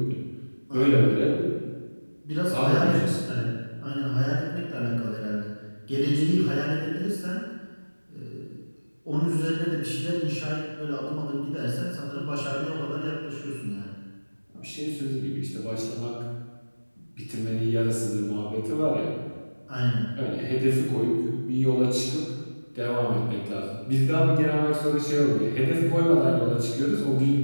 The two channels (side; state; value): both; inverted; correlation -1.00